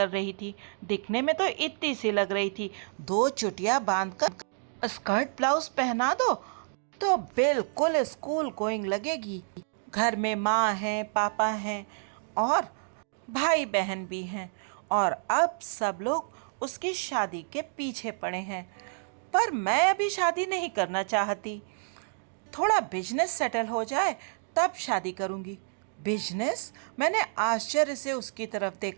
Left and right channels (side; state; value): left; silent; digital silence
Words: रही थी। दिखने में तो इतनी सी लग रही थी। 2 चुटिया बांधकर स्कर्ट ब्लाउज पहना दो तो बिल्कुल स्कूल गोइंग लगेगी। घर में माँ है, पापा हैं और भाई बहन भी हैं और अब सब लोग उसकी शादी के पीछे पड़े हैं। पर मैं अभी शादी नहीं करना चाहती। थोड़ा बिजनेस सेटल हो जाए तब शादी करूंगी। बिजनेस? मैंने आश्चर्य से उसकी तरफ